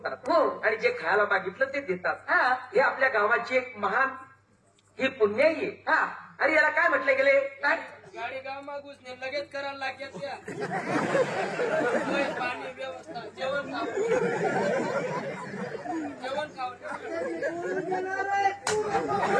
हो आणि जे खायला मागितलं ते देतात हे आपल्या गावाची एक महान ही पुण्याई आहे अरे याला काय म्हटलं गेले काय गाडी गाव मागूस ने लगेच करायला लागेल त्या पाणी व्यवस्था जेवण खाऊ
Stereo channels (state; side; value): identical; both; correlation 1.00